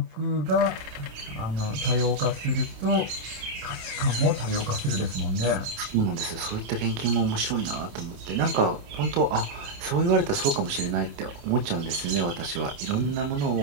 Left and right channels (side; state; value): left; late; 27 ms